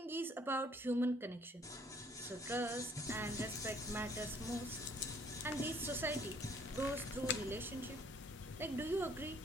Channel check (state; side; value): normal; both; correlation 0.61